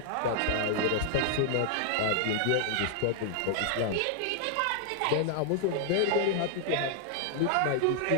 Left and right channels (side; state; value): both; different; correlation 0.00